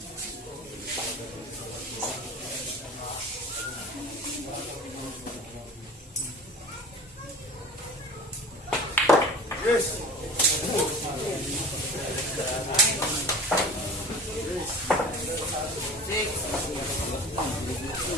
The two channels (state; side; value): normal; both; correlation 0.38